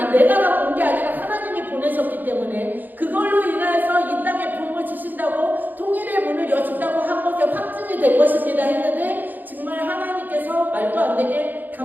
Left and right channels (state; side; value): late; left; 0.086 ms